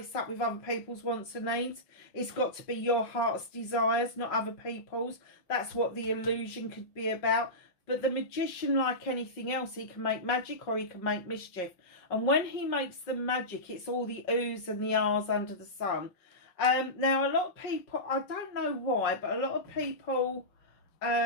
up with other people's wants and needs. It's got to be your heart's desires, not other people's. That's what the illusion could be about. But the magician, like anything else, he can make magic or he can make mischief. And when he makes the magic, it's all the oohs and the ahs under the sun. Now, a lot of people, I don't know why, but a lot of people,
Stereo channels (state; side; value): late; right; 5.4 ms